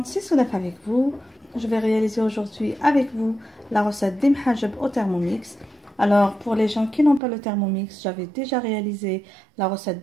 c'est Soudaf avec vous. Je vais réaliser aujourd'hui avec vous la recette des mhajeb au Thermomix. Alors pour les gens qui n'ont pas le Thermomix, j'avais déjà réalisé la recette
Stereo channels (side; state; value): left; drops out; at 7.2 s